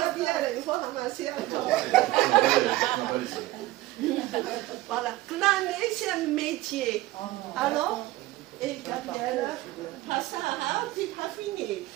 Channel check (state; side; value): quieter; left; 17.6 dB